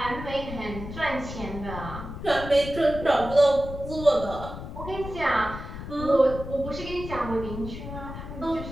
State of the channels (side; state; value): left; noise; rumble, 9 dB below the sound